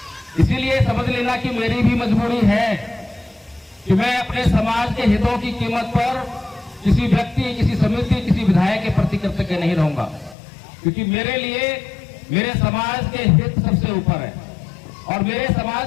इसीलिए समझ लेना कि मेरी भी मजबूरी है कि मैं अपने समाज के हितों की कीमत पर किसी व्यक्ति, किसी समिति, किसी विधायक के प्रति कृतज्ञ नहीं रहूंगा, क्योंकि मेरे लिए मेरे समाज के हित सबसे ऊपर है। और मेरे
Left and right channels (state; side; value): drops out; right; at 10.4 s